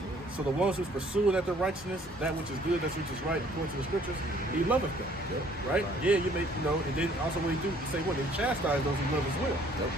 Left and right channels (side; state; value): both; normal; correlation 0.59